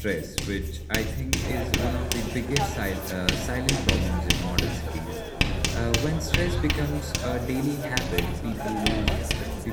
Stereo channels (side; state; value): both; identical; correlation 1.00